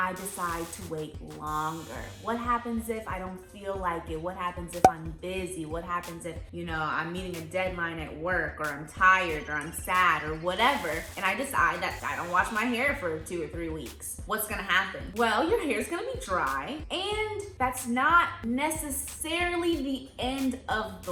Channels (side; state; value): both; identical; correlation 1.00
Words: decide to wait longer? What happens if I don't feel like it? What happens if I'm busy? What happens if, you know, I'm meeting a deadline at work, or I'm tired, or I'm sad, or whatever, and I decide that I don't wash my hair for 2 or 3 weeks? What's gonna happen? Well, your hair's gonna be dry, and that's not necessarily the end of